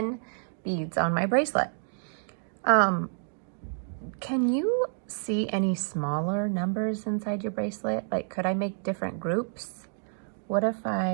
beads on my bracelet. Can you see any smaller numbers inside your bracelet? Like, could I make different groups? What if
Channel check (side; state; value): left; silent; digital silence